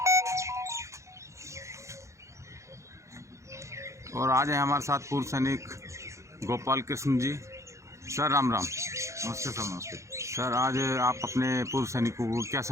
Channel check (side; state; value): left; late; 0.14 ms